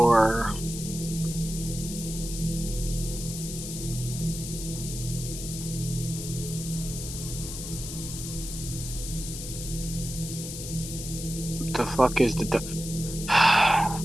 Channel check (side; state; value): left; noise; hiss, 8 dB below the sound